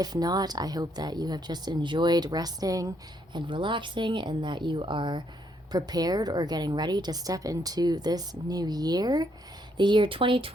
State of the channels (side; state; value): both; normal; correlation 0.72